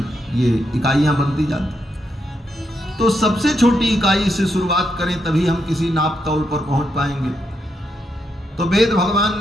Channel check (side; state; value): both; normal; correlation 0.81